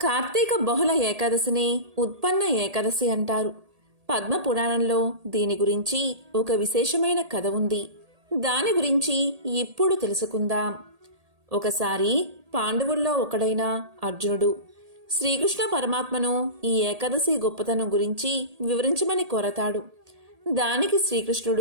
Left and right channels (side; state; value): left; late; 1.8 ms